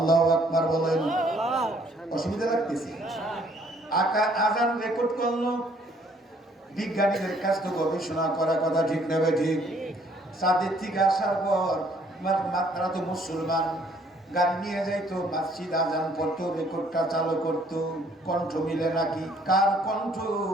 আকবার বলেন। অসুবিধা লাগতেছে? আজান রেকর্ড করলো। বিজ্ঞানীদের কাছ থেকে গবেষণা করা, কথা ঠিক নেবে ঠিক। চাঁদের থেকে আসার পর তারা তো মুসলমান, গাড়ি নিয়ে যাইতো, মসজিদ আজান পড়তো, রেকর্ডটা চালু করতো। কণ্ঠ মিলে নাকি? কার কণ্ঠ?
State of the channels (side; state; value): both; normal; correlation 0.63